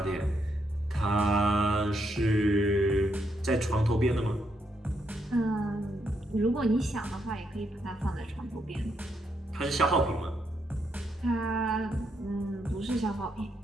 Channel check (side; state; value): both; normal; correlation 0.78